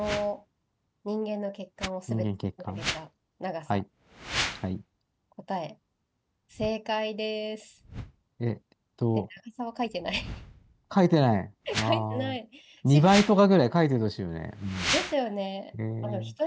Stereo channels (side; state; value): both; identical; correlation 1.00